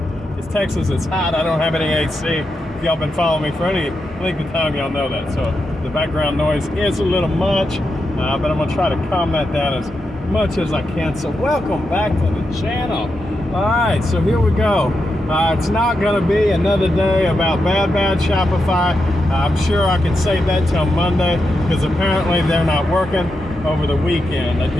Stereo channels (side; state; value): both; normal; correlation 0.86